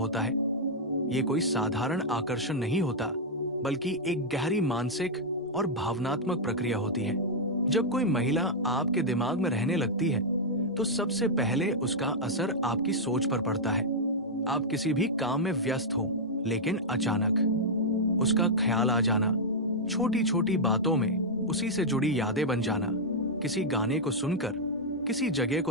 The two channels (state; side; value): normal; both; correlation -0.05